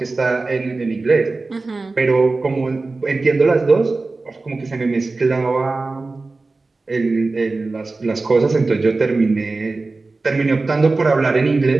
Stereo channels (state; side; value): quieter; left; 3.6 dB